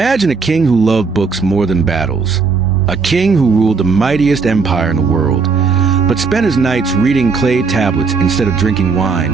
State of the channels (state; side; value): quieter; left; 4.8 dB